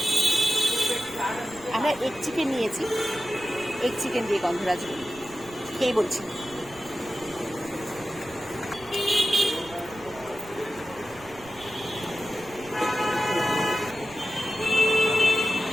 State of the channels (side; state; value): right; noise; rumble, 21 dB below the sound